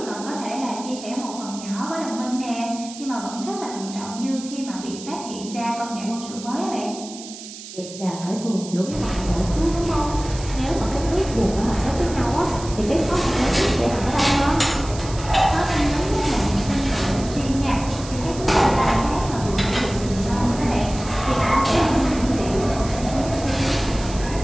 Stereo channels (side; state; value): right; noise; hiss, 14 dB below the sound